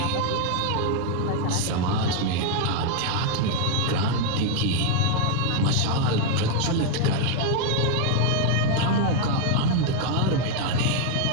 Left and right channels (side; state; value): both; different; correlation 0.00